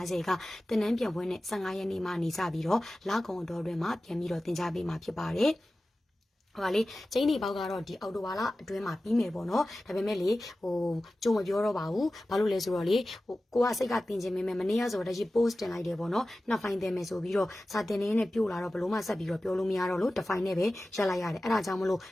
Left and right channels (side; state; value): both; normal; correlation 0.95